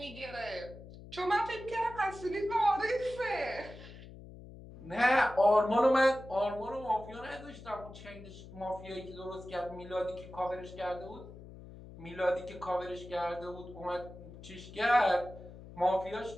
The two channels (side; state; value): left; noise; hum, 16 dB below the sound